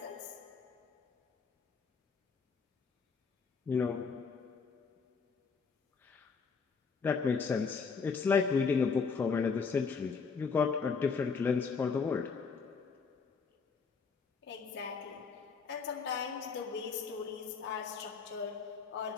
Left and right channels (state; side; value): quieter; right; 5.3 dB